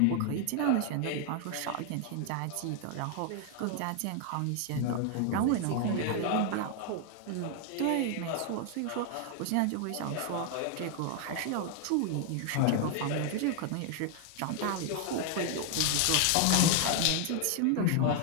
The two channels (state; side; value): different; both; correlation 0.00